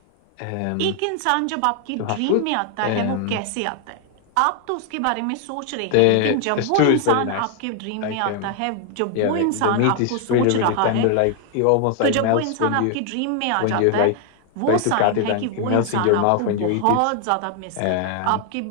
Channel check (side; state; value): both; different; correlation 0.00